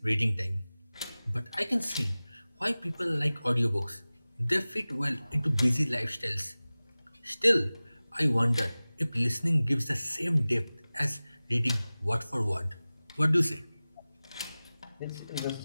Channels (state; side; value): inverted; both; correlation -0.98